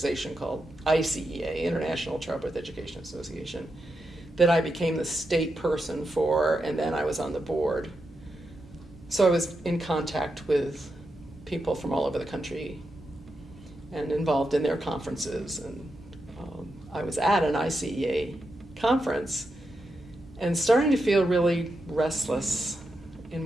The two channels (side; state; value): both; normal; correlation 0.86